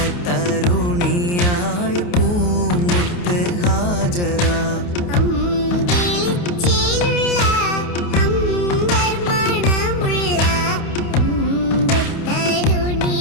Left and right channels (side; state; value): right; late; 28 ms